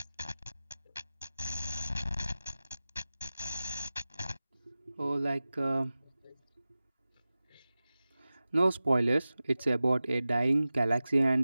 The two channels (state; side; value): inverted; both; correlation -0.96